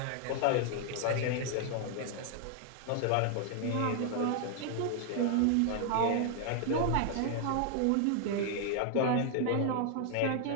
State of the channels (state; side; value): different; both; correlation 0.00